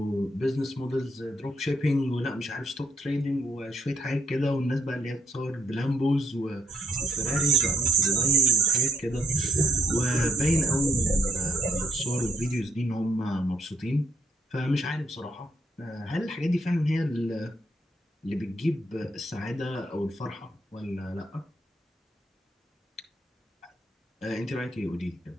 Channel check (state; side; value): normal; both; correlation 0.72